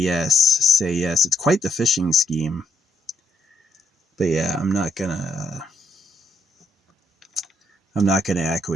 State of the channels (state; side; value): normal; both; correlation 0.73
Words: say yes. It's quite the phishing scheme. But yeah, I'm not gonna